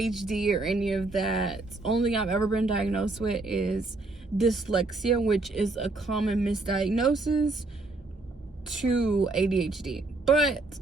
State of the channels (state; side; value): quieter; left; 3.2 dB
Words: or any of that. Only I've ever been diagnosed with is dyslexia, which is a common misdiagnosis to ADHD, but